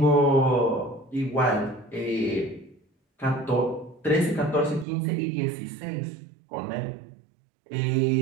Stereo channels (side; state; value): left; drops out; at 4.9 s